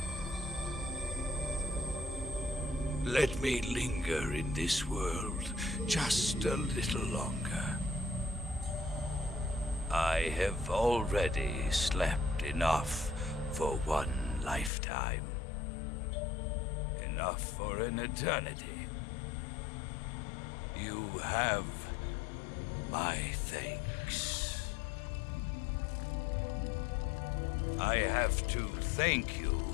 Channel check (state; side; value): drops out; right; at 14.7 s